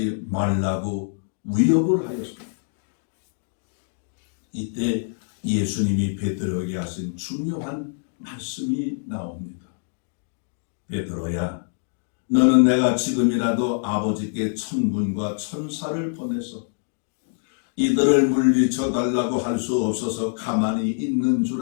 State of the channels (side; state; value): right; silent; digital silence